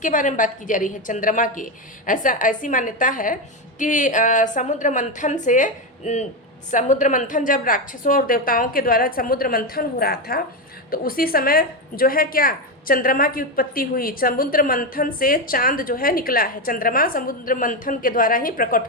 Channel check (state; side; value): normal; both; correlation 0.11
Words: बारे में बात की जा रही है? चंद्रमा की। ऐसी मान्यता है कि समुद्र मंथन जब राक्षसों और देवताओं के द्वारा समुद्र मंथन हो रहा था तो उसी समय जो है क्या चंद्रमा की उत्पत्ति हुई। समुद्र मंथन से चांद जो है निकला है, चंद्रमा समुद्र मंथन के द्वारा ही प्रकट